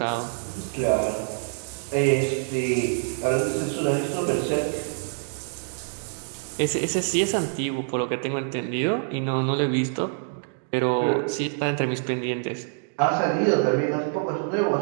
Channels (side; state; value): left; silent; 61 dB below the other